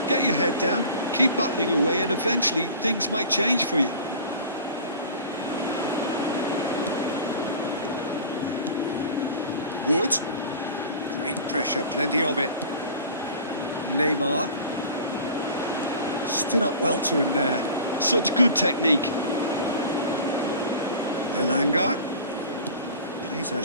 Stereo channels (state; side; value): inverted; both; correlation -0.40